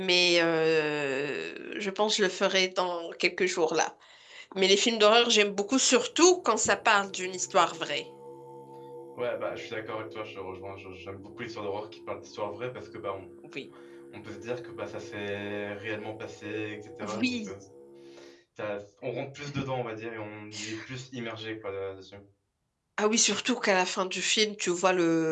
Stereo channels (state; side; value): identical; both; correlation 1.00